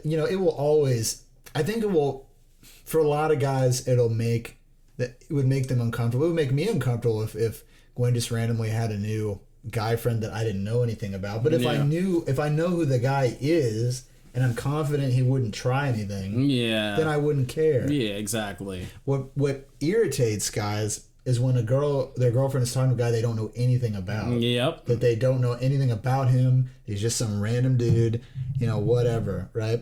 will always, I think it will, for a lot of guys, it would make them uncomfortable. It would make me uncomfortable if Gwen just randomly had a new guy friend that I didn't know anything about. But if I know who the guy is and I'm confident he wouldn't try anything, then I wouldn't care. Yeah, exactly. What irritates guys is when their girlfriend is talking to a guy they don't know anything about. Yep. That they don't know anything about him. He's just some random dude, whatever,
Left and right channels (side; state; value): both; identical; correlation 1.00